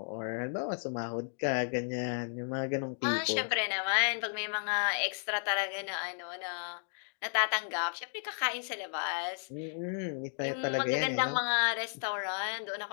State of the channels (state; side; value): silent; right; digital silence